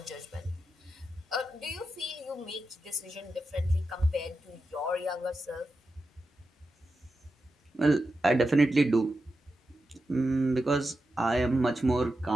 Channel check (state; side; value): normal; both; correlation 0.89